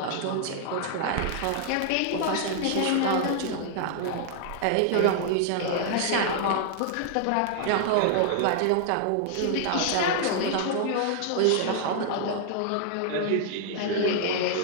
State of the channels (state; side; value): different; both; correlation 0.00